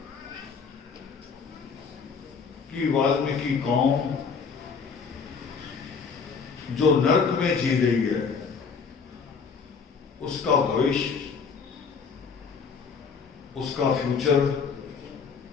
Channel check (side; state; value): right; quieter; 5.6 dB